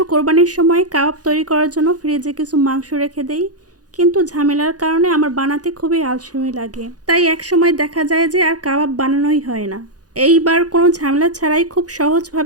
কোরবানির সময় কাবাব তৈরি করার জন্য ফ্রিজে কিছু মাংস রেখে দেই, কিন্তু ঝামেলার কারণে আমার বানাতে খুবই আলসেমি লাগে। তাই এক সময় দেখা যায় যে আর কাবাব বানানোই হয় না। এইবার কোনো ঝামেলা ছাড়াই খুব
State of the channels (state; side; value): late; left; 0.68 ms